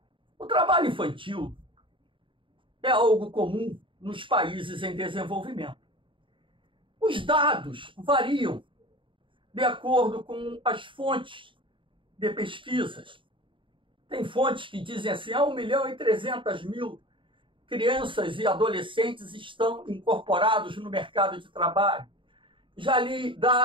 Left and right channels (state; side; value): late; left; 0.25 ms